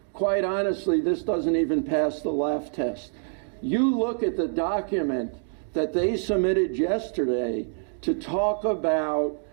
quite honestly, this doesn't even pass the laugh test. You look at the document that they submitted yesterday to talk about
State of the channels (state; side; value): silent; left; digital silence